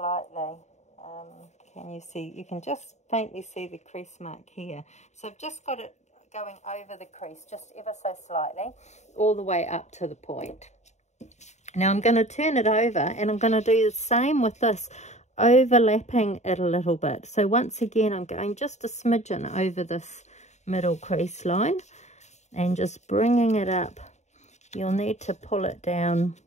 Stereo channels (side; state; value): right; late; 0.33 ms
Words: Can you see? You can just faintly see the crease mark here. So I've just got it going over the crease just ever so slightly, all the way up to the point. Now I'm going to turn it over, and I'm going to do the same with this, overlapping it a little bit. So once again I'm going just a smidgen over this middle crease line and just bringing it up. You'll need to pull it down.